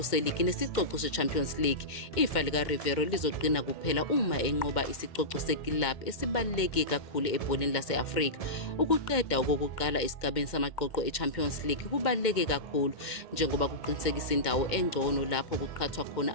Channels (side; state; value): right; late; 2.1 ms